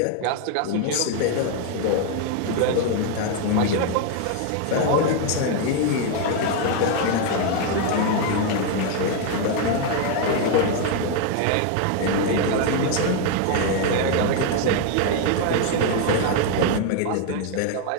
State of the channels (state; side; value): different; both; correlation 0.01